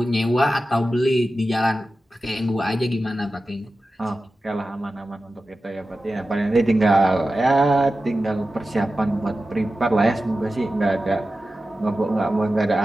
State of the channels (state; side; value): normal; both; correlation 0.94